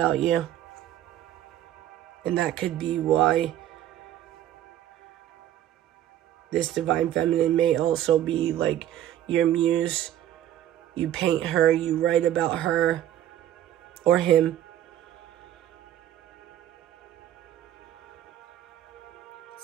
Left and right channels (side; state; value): left; quieter; 12.1 dB